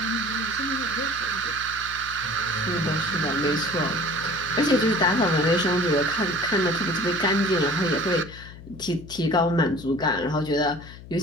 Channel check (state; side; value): noise; left; hum, 16 dB below the sound